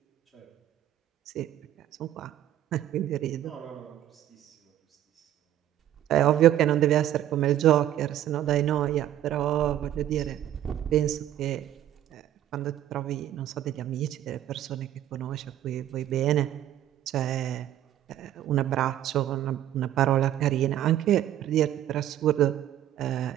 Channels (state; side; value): quieter; left; 11.9 dB